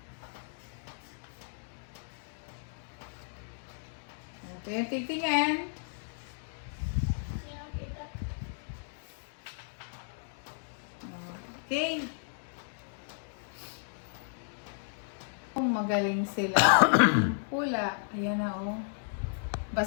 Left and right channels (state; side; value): silent; right; digital silence